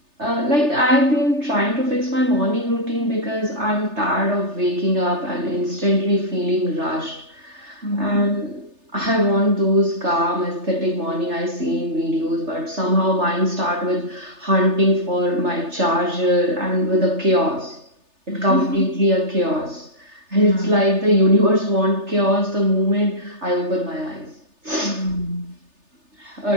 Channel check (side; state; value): left; late; 3.3 ms